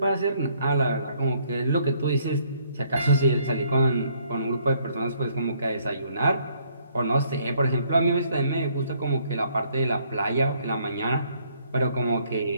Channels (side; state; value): both; inverted; correlation -0.66